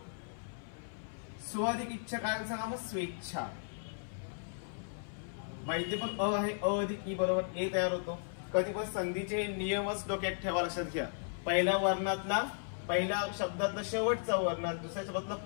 स्व अधिक इच्छा काय सांगा मग, स्वेच्छा. माहिती पण अ आहे, अ अधिक ई बरोबर ए तयार होतो. कधी पण संधीचे नियमच डोक्यात ठेवा, लक्षात घ्या. पहिल्या वर्णातला, पहिल्या शब्दातला शेवटचा वर्ण, दुसऱ्या शब्दातला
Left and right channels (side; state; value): right; silent; 54 dB below the other